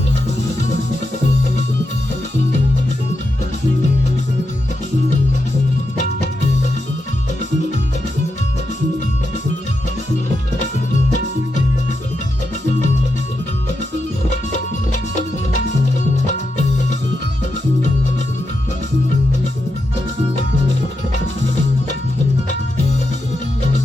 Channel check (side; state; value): both; normal; correlation 0.86